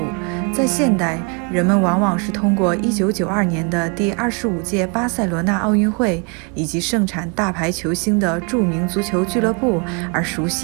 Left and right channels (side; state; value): left; quieter; 34.6 dB